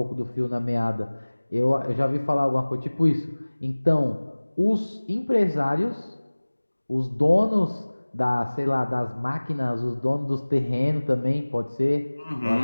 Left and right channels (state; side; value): inverted; both; correlation -1.00